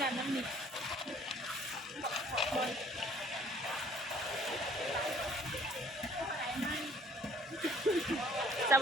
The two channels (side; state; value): both; normal; correlation 0.57